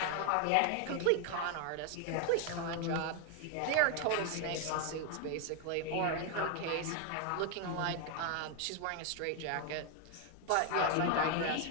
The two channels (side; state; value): both; different; correlation 0.01